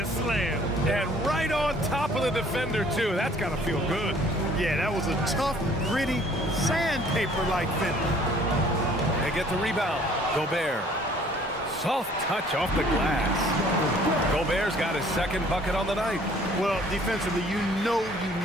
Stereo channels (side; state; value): both; normal; correlation 0.56